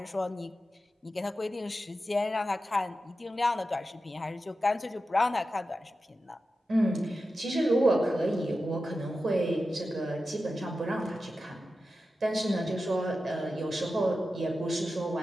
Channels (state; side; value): normal; both; correlation 0.92